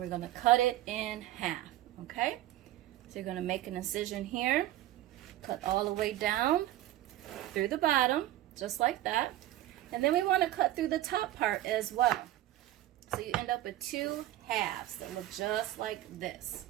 going to cut it in half, okay? So you're going to make an incision here, cut all the way down through the bottom, just like that. And then we want to cut through the top part as well. So you end up with two halves that look just like this.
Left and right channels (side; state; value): left; quieter; 14.7 dB